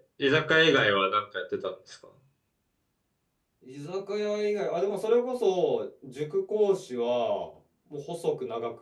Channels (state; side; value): identical; both; correlation 1.00